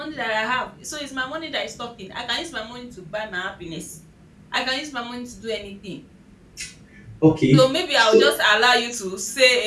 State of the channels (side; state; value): both; identical; correlation 1.00